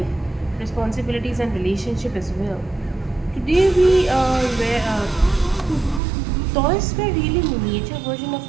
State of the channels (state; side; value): drops out; left; at 6.0 s